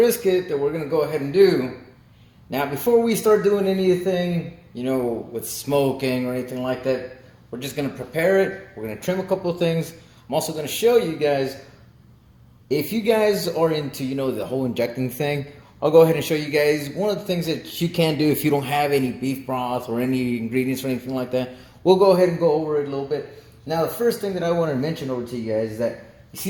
that we're gonna go ahead and do. Now, before we start doing anything, with smoking or anything like that, we're just gonna prepare it. We're gonna trim a couple of things. I'm also gonna show you guys, if you guys are into, the whole injecting thing, I'll go ahead and show you guys one of the things that you can do if you don't have any beef broth or any ingredients or anything like that. We'll go ahead and go over it a little bit. Now, the first thing that I want to mention over to you guys is that you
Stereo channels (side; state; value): both; identical; correlation 1.00